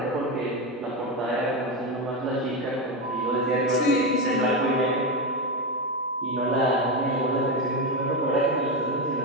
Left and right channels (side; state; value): both; normal; correlation 0.13